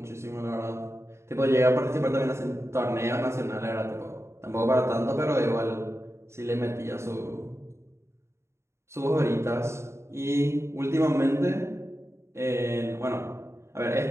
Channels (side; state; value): left; late; 0.13 ms